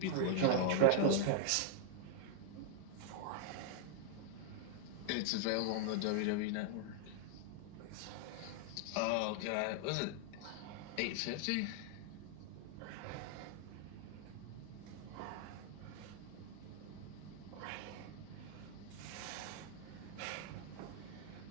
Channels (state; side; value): different; both; correlation 0.00